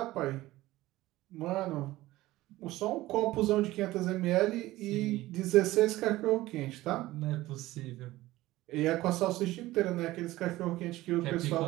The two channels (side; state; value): left; quieter; 17.3 dB